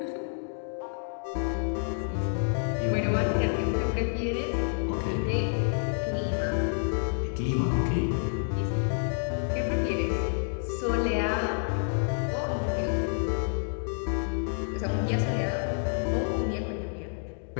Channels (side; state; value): right; silent; digital silence